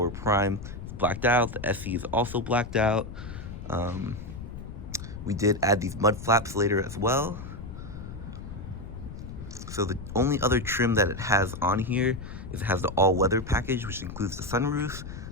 Prime is blacked out, the SE is also blacked out. We did add these mud flaps later as well. So the only other trim that it has on here is it has the all-weather package, which includes the sunroof,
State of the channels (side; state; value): left; noise; rumble, 10 dB below the sound